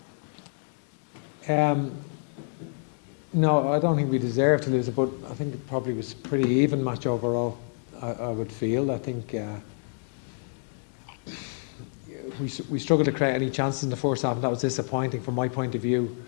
have one? No, I don't think we deserve to lose it, but I think it probably was a pretty even match overall, I would feel. I think we struggled to create any chances in the first half, and that was disappointing from my point of view.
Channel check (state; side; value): silent; right; 59 dB below the other